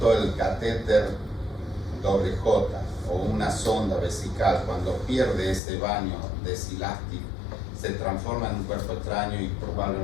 el catéter doble J o una sonda vesical, cuando pierde ese baño desilástico, se transforma en un cuerpo extraño y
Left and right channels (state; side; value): drops out; right; at 5.6 s